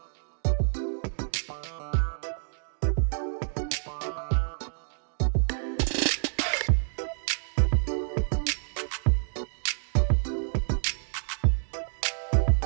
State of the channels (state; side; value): silent; left; digital silence